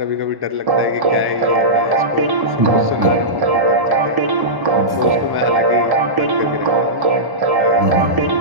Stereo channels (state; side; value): late; left; 1.1 ms